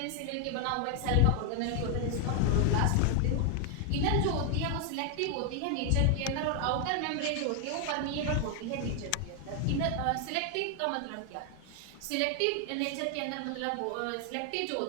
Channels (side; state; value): both; different; correlation 0.00